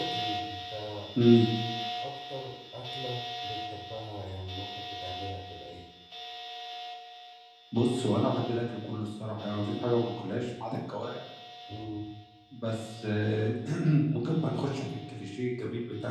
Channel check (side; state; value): both; identical; correlation 1.00